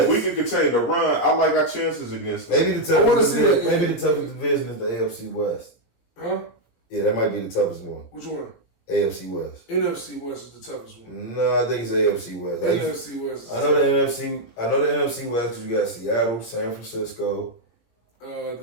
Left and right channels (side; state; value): right; late; 17 ms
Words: If we can continue to run, I like our chances against them. Maybe the toughest division is the AFC West. Huh? Yeah, that might be the toughest one. Which one? AFC West. NFC West is the toughest one. No, I think it's AFC West. NFC West. I know the NFC West because you got Seattle, San Francisco. You